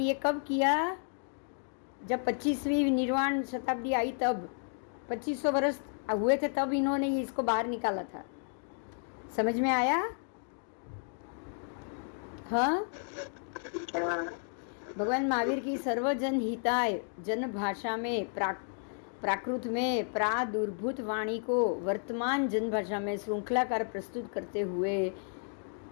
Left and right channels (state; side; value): silent; right; 55 dB below the other